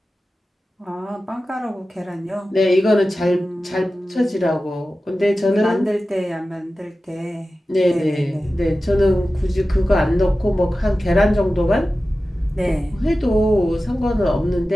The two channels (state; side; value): normal; both; correlation 0.94